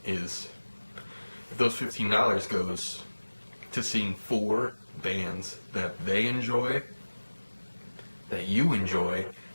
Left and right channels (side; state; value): both; inverted; correlation -1.00